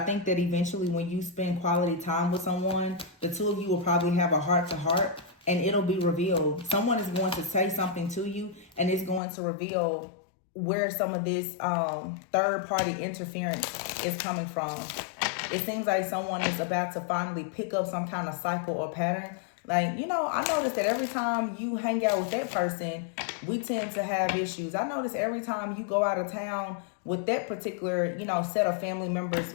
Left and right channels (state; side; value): drops out; right; at 9.2 s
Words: think that eventually when you spend quality time with someone, the two of you will probably have a heart-to-heart and it'll be revealed. Someone is going to say something to you and it's going to reveal where some of this third-party interference is coming from. It seems like someone is about to finally pick up some kind of cycle or pattern. Like, you know, I noticed that every time you hang out with that person, we tend to have issues. I notice every time you go out of town with that particular, you know, set of family members,